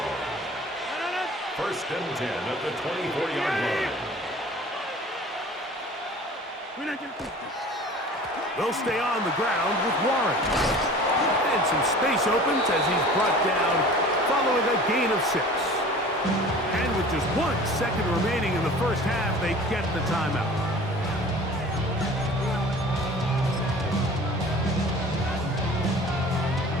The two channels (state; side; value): normal; both; correlation 0.43